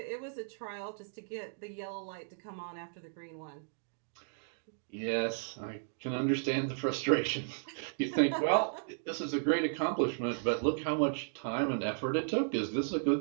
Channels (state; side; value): silent; left; digital silence